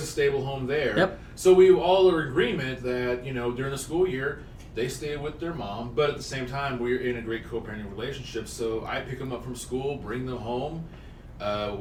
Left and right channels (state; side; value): identical; both; correlation 1.00